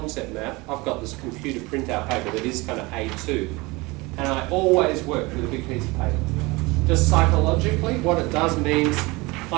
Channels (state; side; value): quieter; left; 23.8 dB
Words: map, I've got this computer printout paper that is kind of A2, and I always work with a big piece of paper. Just psychologically, what it does means